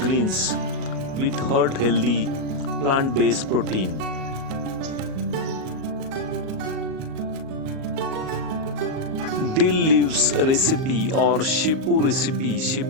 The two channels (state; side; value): late; left; 38 ms